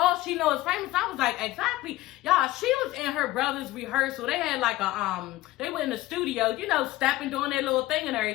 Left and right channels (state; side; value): quieter; right; 17.2 dB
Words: she knows is famous. I was like, exactly. Y'all, she was in her brother's rehearsal. They had like they were in the studio, you know, stepping, doing their little thing and